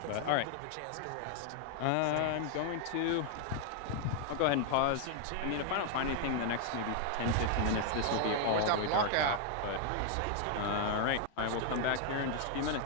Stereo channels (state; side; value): different; both; correlation 0.00